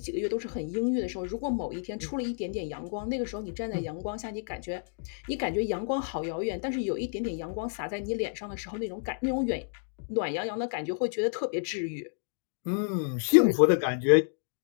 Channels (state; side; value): silent; right; digital silence